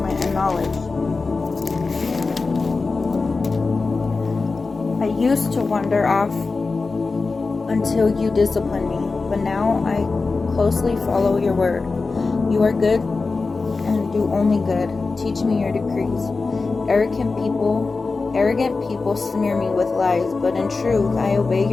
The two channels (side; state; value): right; quieter; 4.0 dB